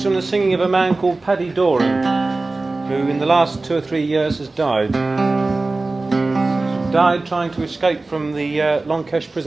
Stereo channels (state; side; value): quieter; left; 3.3 dB